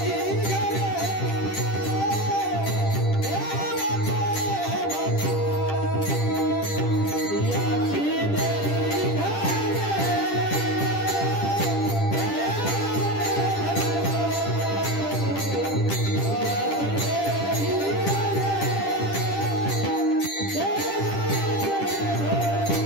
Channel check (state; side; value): late; right; 10 ms